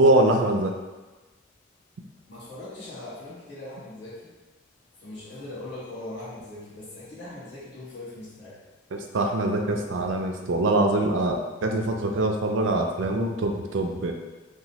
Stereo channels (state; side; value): normal; both; correlation 0.12